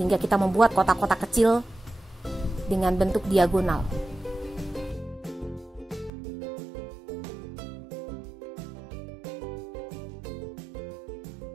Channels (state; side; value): drops out; left; at 6.1 s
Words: kita membuat kotak-kotak kecil dengan bentuk diagonal.